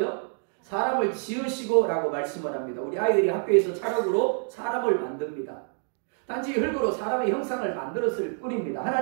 사람을 지으시고 라고 말씀을 합니다. 우리 아이들이 학교에서 찰흙으로 사람을 만듭니다. 단지 흙으로 사람의 형상을 만들었을 뿐입니다.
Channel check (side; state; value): left; silent; 60 dB below the other